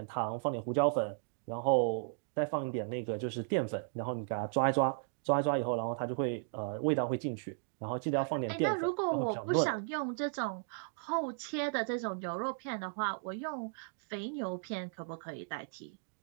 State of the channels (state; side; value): silent; left; digital silence